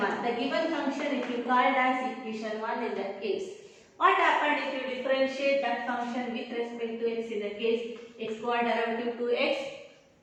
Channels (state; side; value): identical; both; correlation 1.00